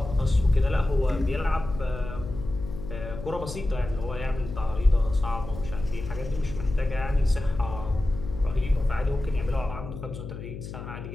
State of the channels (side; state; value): left; noise; hum, 9 dB below the sound